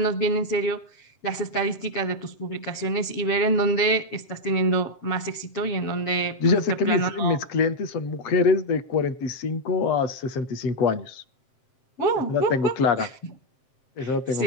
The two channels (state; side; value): late; right; 7.6 ms